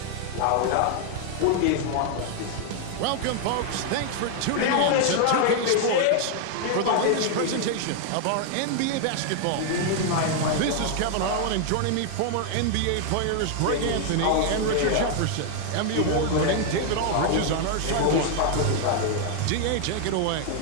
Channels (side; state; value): both; different; correlation 0.00